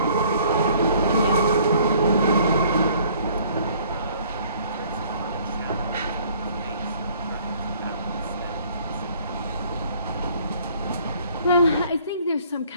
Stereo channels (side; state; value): both; inverted; correlation -0.57